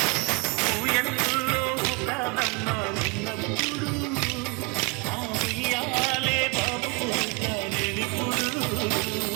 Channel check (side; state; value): left; quieter; 28.7 dB